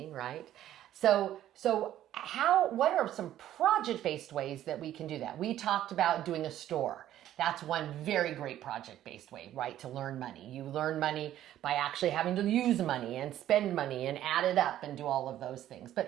right? So what are some project-based ways that we can do that? We talked about doing a store. That's one very great project-based way, right, to learn money. You learn money by actually having to use money and spend money and add it up and do all of those things.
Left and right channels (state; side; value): quieter; left; 12.4 dB